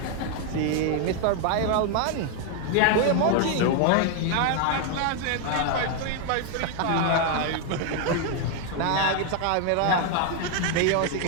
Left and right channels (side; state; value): both; different; correlation 0.00